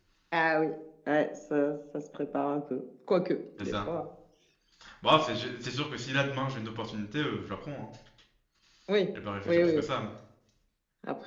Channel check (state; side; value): identical; both; correlation 1.00